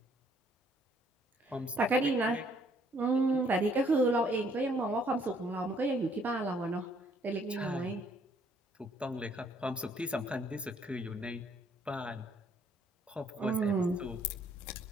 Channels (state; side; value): normal; both; correlation 0.65